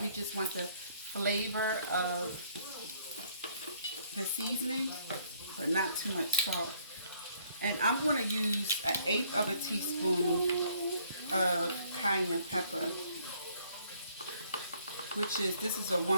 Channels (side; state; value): both; inverted; correlation -0.64